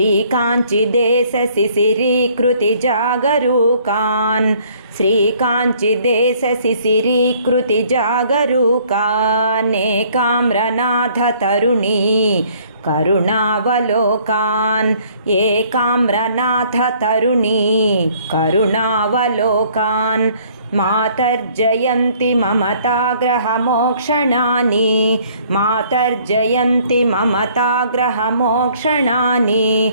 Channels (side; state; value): both; inverted; correlation -0.60